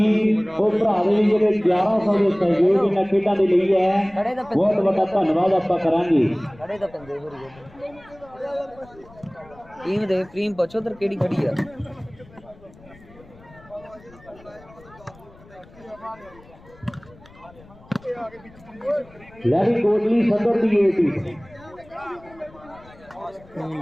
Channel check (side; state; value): left; noise; rumble, 24 dB below the sound